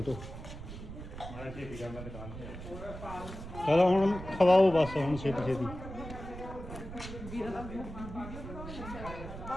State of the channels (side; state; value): right; noise; rumble, 11 dB below the sound